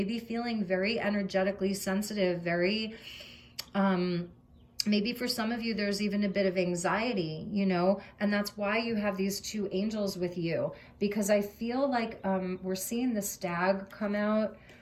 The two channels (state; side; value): identical; both; correlation 1.00